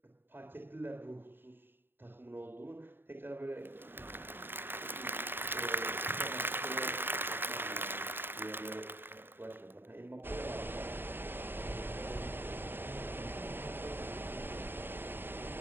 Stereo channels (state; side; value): late; left; 0.098 ms